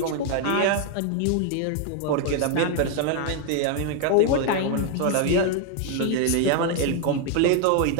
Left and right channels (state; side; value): different; both; correlation 0.00